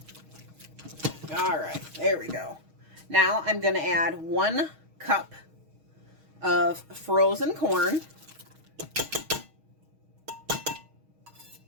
All right, there we go. Now I'm going to add 1 cup of frozen corn.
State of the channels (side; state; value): left; late; 6.3 ms